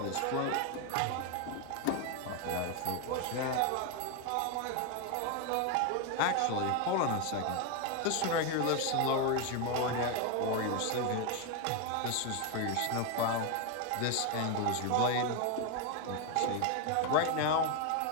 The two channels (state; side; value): different; both; correlation 0.01